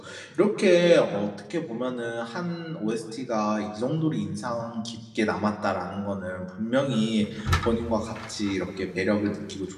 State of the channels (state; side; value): identical; both; correlation 1.00